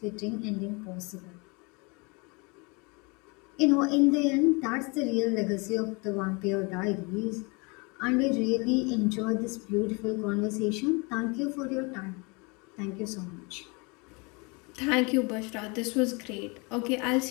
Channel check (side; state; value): right; quieter; 29.5 dB